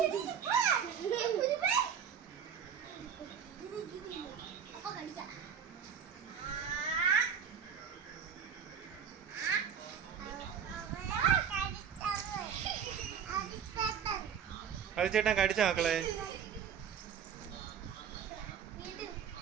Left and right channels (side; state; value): left; quieter; 7.7 dB